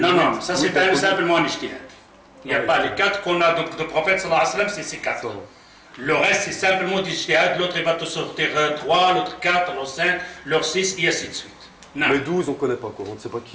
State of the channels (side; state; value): both; identical; correlation 1.00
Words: ça c'est simplement un ijtihad. Il n'y a pas les 4 qu'on a de prophète sallallahu alayhi wa sallam, c'est ces 4. Le reste c'est simplement du ijtihad, l'autre il va te sortir 3, l'autre 4, l'autre 5, l'autre 6 et ainsi de suite. Non. Mais 12 on ne connaît pas quoi, on ne sait pas